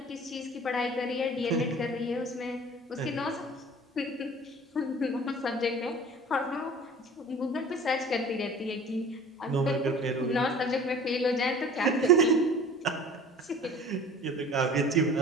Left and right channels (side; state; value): both; normal; correlation 0.45